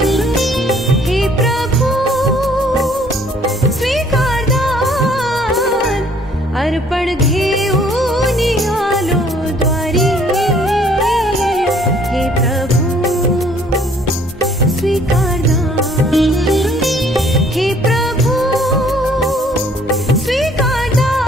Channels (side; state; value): both; normal; correlation 0.60